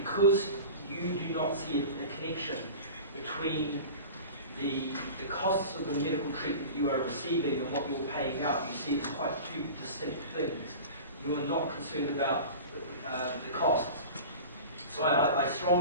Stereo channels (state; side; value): inverted; both; correlation -0.35